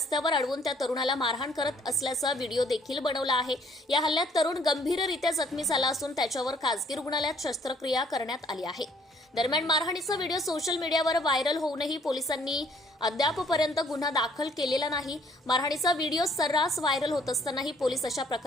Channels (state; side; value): normal; both; correlation 0.61